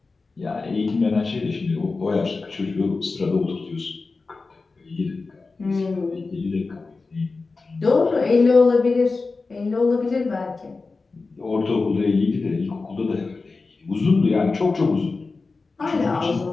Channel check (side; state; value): right; quieter; 4.0 dB